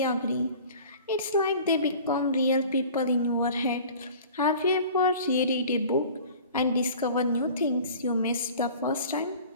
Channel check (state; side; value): inverted; both; correlation -0.44